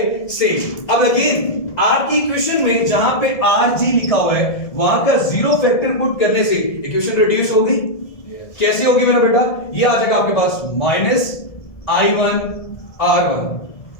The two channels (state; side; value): late; right; 1.7 ms